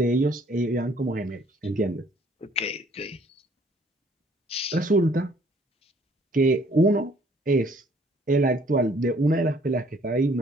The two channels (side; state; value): both; normal; correlation 0.60